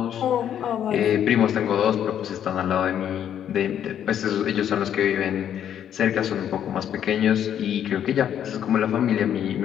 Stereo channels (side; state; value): right; quieter; 9.7 dB